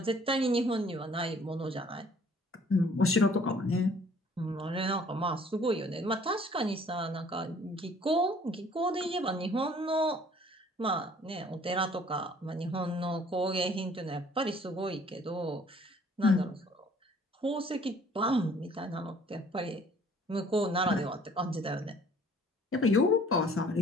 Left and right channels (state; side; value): normal; both; correlation 0.56